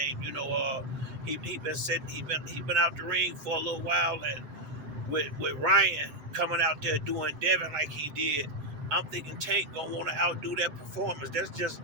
He been out the ring for a little while, and with Ryan coming out there doing Devin like he did, I'm thinking Tank gonna want to outdo that performance. That's just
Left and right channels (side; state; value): left; late; 7.7 ms